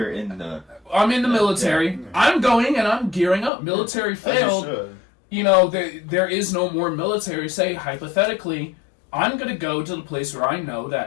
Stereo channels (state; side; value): drops out; right; at 3.5 s